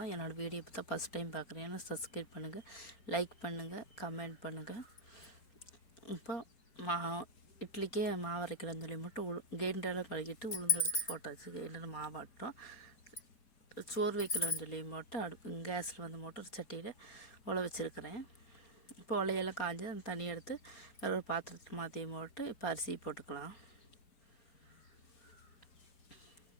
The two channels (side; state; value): right; late; 4.3 ms